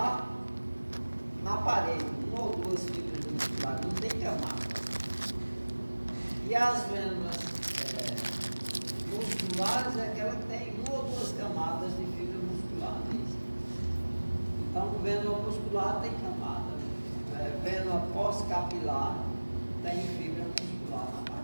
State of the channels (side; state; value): both; inverted; correlation -1.00